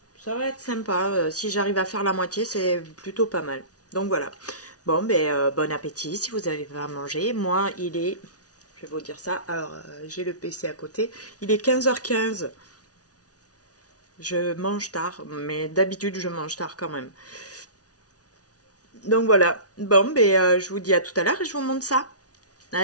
ça va être sympa. Si j'arrive à faire la moitié, c'est plutôt pas mal. Donc voilà. Bon, bon appétit si vous avez pas à manger. Moi, il est, je vais vous dire ça. Alors, j'ai le PC à côté. Il est 15h15. Je mange tard, mais d'habitude, je mange tard quand même. Donc voilà. Bon, je vous dis à tout à l'heure et je vous montre ça.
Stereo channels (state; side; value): late; right; 0.68 ms